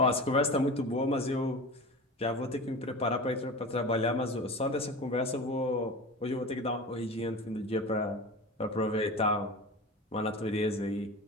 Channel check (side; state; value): both; normal; correlation 0.31